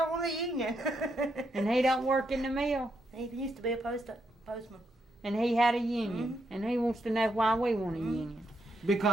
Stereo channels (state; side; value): normal; both; correlation 0.80